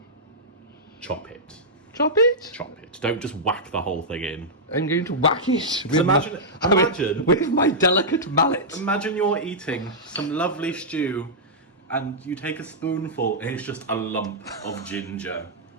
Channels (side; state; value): both; normal; correlation -0.09